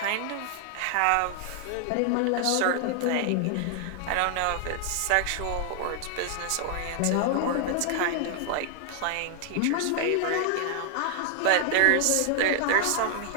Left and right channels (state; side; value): different; both; correlation 0.00